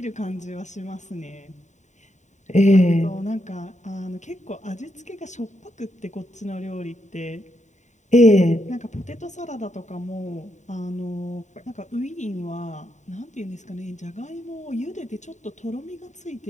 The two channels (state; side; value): late; right; 0.34 ms